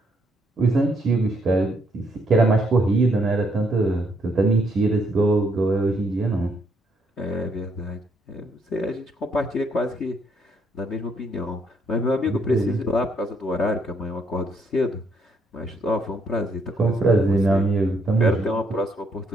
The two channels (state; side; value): normal; both; correlation 0.72